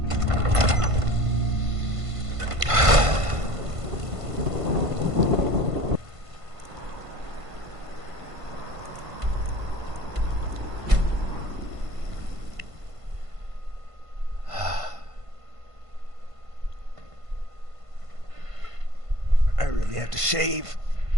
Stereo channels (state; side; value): late; left; 1.5 ms